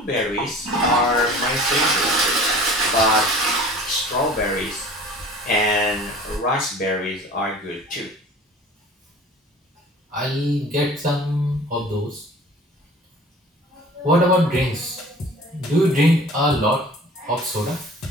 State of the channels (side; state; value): both; normal; correlation 0.45